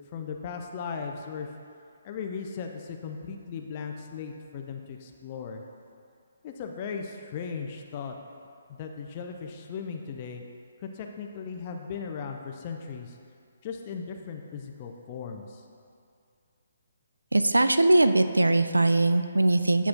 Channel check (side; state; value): both; inverted; correlation -0.91